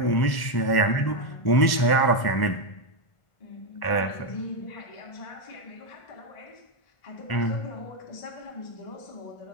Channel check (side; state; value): right; late; 1.1 ms